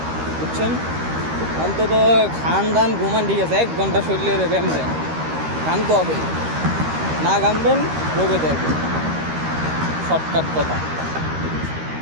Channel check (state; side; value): late; left; 13 ms